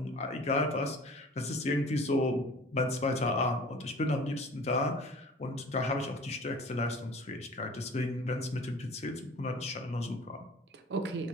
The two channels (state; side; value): normal; both; correlation 0.45